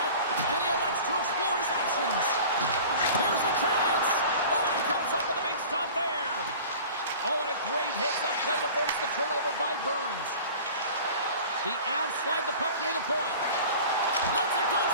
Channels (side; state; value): both; inverted; correlation -0.41